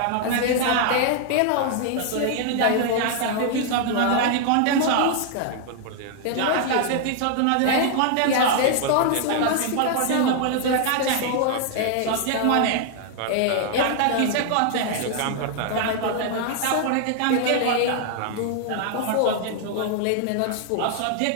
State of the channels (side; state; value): both; different; correlation 0.00